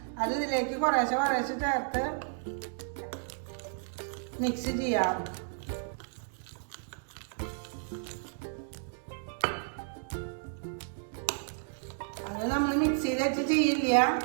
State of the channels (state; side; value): silent; left; digital silence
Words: അത് ഇതിലേക്ക് കുറേശ്ശെ ചേർത്ത് മിക്സ് ചെയ്യാം. അത് നമ്മൾ മിക്സിയിൽ വെച്ച് ചെയ്യില്ല,